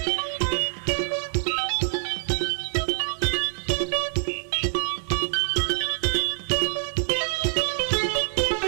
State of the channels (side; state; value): left; silent; digital silence